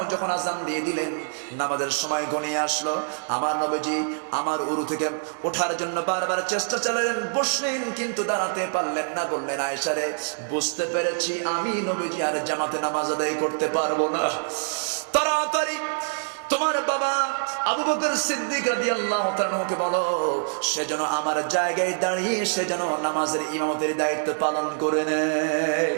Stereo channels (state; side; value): silent; left; 62 dB below the other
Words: যখন আযান দিয়ে দিলেন, নামাজের সময় ঘনিয়ে আসলো। আমার নবীজি আমার উরু থেকে ওঠার জন্য বারবার চেষ্টা চালালেন, বসলেন কিন্তু দাঁড়াতে পারলেন না। বললেন, আয়েশা রে, বুঝতে পেরেছি আমি নবীজি আর জামাতে নামাজ আদায় করতে পারবো না, তাড়াতাড়ি তোমার বাবা আবু বকর সিদ্দিক রাদিয়াল্লাহু তাআলাকে বলো, সে যেন আমার জায়গায় দাঁড়িয়ে সে যেন নামাজের ইমামতের দায়িত্ব পালন করে নেয়।